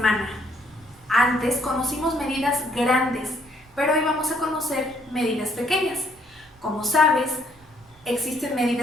Antes conocimos medidas grandes, pero hoy vamos a conocer medidas pequeñas. Como sabes, existen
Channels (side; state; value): right; noise; rumble, 28 dB below the sound